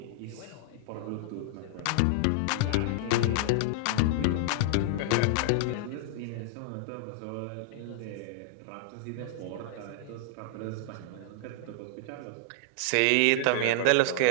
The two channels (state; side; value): different; both; correlation -0.01